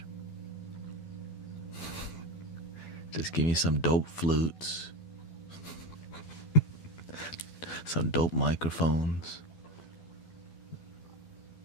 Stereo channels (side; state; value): right; late; 12 ms